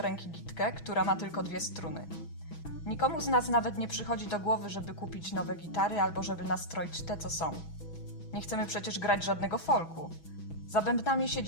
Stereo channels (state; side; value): late; right; 6.1 ms